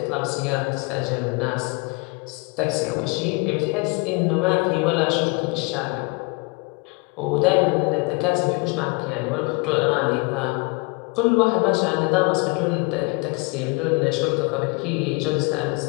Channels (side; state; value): right; quieter; 29.1 dB